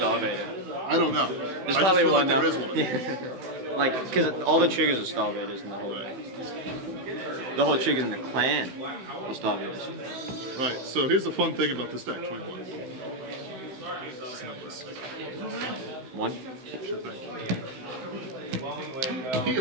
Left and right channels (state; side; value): late; left; 16 ms